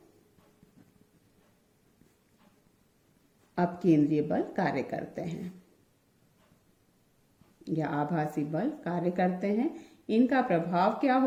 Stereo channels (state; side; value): identical; both; correlation 1.00